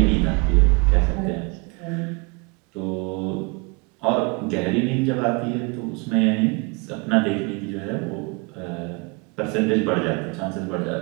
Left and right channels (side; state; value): left; quieter; 30.1 dB